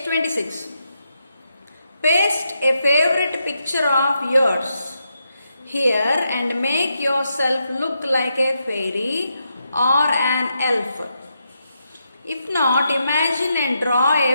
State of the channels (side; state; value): both; inverted; correlation -0.83